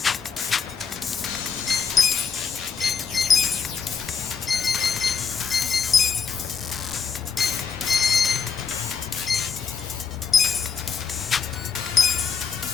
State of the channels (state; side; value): quieter; right; 5.9 dB